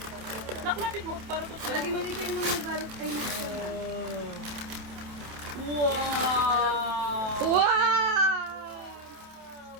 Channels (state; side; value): late; left; 27 ms